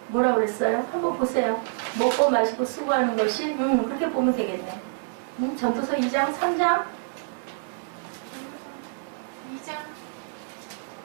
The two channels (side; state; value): left; silent; digital silence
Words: 뭐라고 그랬어요? 한번 보세요. 먹고 마시고 수고하는 것이 그렇게 보면 되겠네. 전도서 2장, 3장? 2장.